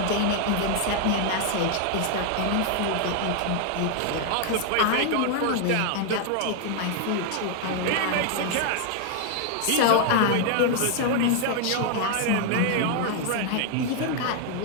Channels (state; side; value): different; both; correlation 0.00